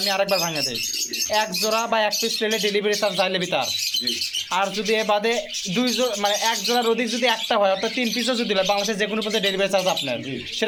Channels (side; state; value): both; identical; correlation 1.00